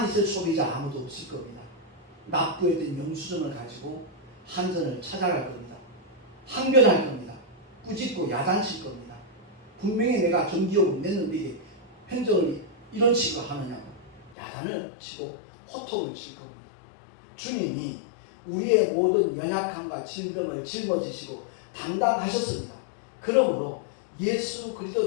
있을 소비자 아무도 없을 겁니다. 납부했던 영수증을 가지고 한전을 찾아갈 겁니다. 항변할 겁니다. 꾸짖고 야단칠 겁니다. 분명히 내가 전기요금 냈는데 이게 행정을 이런 식으로 하느냐고 야단을 치고 호통을 칠 겁니다. 주님이 우리의 모든 연약함과 질병을 짊어지시고 담당하셨습니다. 그러므로 예수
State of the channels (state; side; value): drops out; right; at 14.4 s